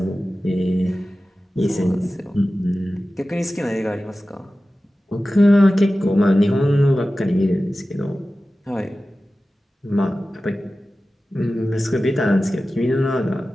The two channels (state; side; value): normal; both; correlation 0.95